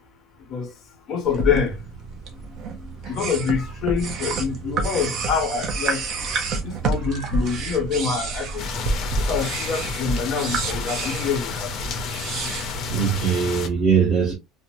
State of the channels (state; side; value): normal; both; correlation 0.43